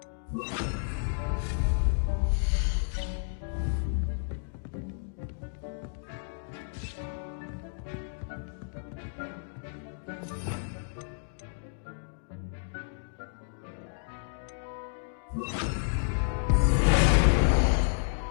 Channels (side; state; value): right; silent; digital silence